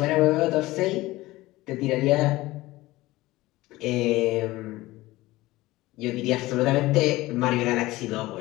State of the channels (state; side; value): quieter; right; 18.7 dB